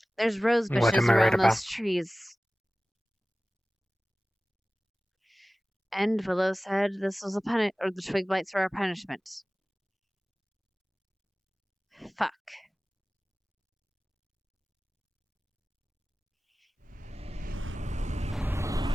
There's rose What bushes am I right around about? those trees. And Willow said this was or the twig blights were our punishment. Fuck.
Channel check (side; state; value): both; normal; correlation 0.97